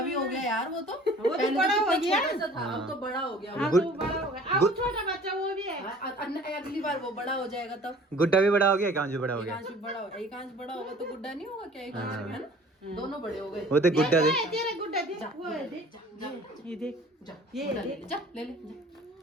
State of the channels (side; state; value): both; normal; correlation 0.49